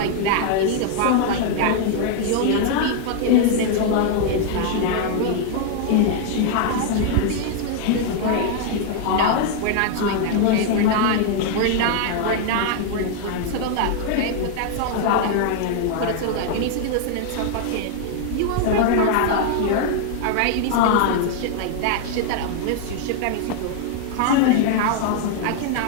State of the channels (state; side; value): different; both; correlation 0.00